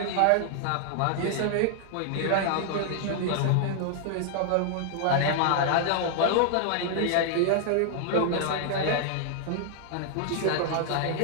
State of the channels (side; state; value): both; different; correlation 0.00